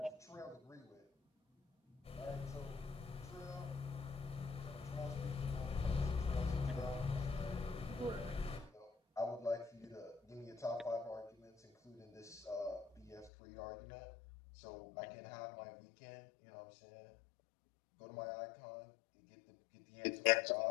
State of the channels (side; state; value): right; drops out; at 13.3 s